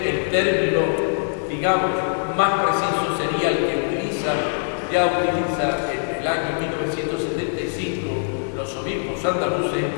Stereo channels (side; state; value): right; silent; digital silence